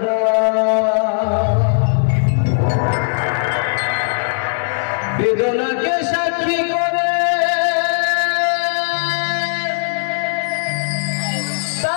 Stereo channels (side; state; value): right; silent; digital silence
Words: বেদনাকে সাক্ষী করে